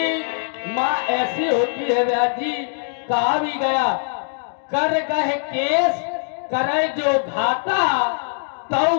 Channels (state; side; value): silent; right; digital silence